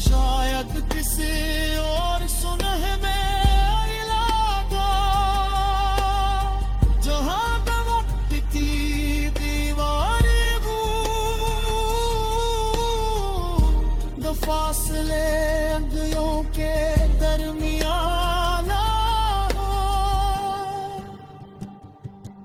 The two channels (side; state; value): both; identical; correlation 1.00